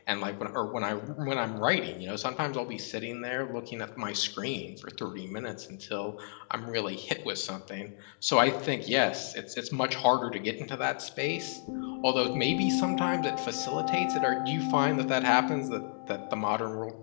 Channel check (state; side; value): silent; right; digital silence